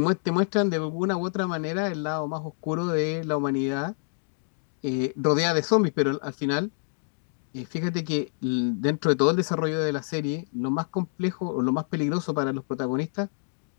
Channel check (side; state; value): right; silent; digital silence